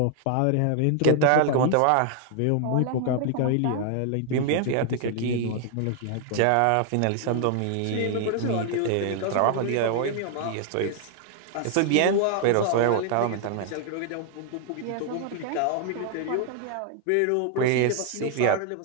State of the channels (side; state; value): both; different; correlation 0.00